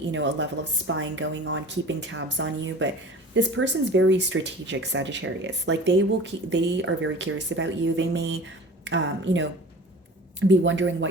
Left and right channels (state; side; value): normal; both; correlation 0.40